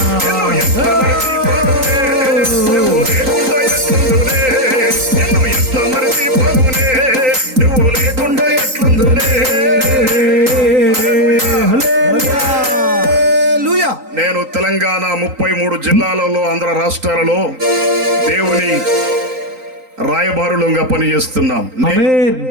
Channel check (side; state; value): left; late; 3.9 ms